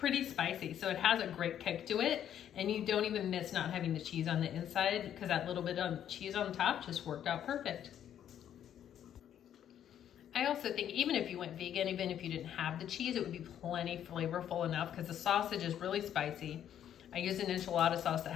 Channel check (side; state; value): right; quieter; 10.1 dB